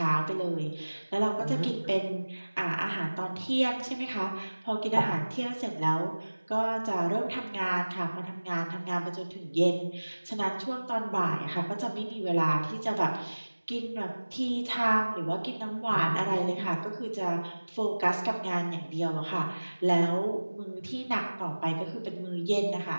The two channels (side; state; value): both; inverted; correlation -1.00